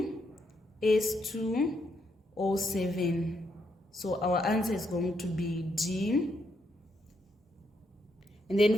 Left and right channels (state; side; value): normal; both; correlation 0.77